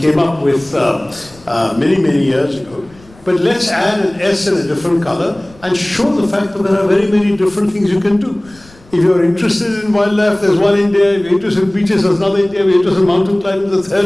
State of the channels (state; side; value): noise; left; rumble, 26 dB below the sound